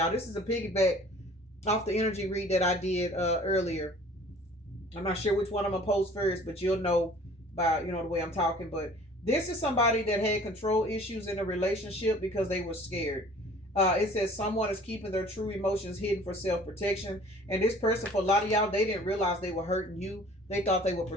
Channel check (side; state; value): both; normal; correlation 0.50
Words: This is a piggyback off the energy read that I did earlier. I'm not sure which one I'm gonna post first, but you'll know by the way I'm talking. But this is somebody that had control issues in a relationship because they were scared. It says someone is keeping their true emotions hidden for self-protection, and this person, for a lot of y'all, they didn't realize they were hurting you. They thought they were